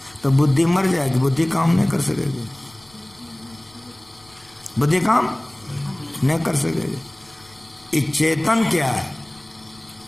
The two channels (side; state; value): left; noise; rumble, 29 dB below the sound